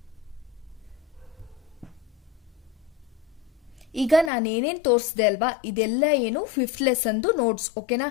ಈಗ ನಾನೇನೇನ್ ತೋರಿಸಿದೆ ಅಲ್ವಾ, ಇದೆಲ್ಲ ಏನು 5th ಲೆಸನ್ದು ನೋಟ್ಸ್, ಓಕೆನಾ.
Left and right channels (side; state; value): right; drops out; at 4.3 s